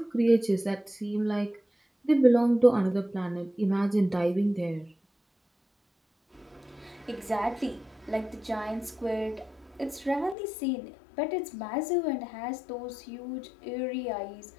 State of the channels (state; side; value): drops out; right; at 10.4 s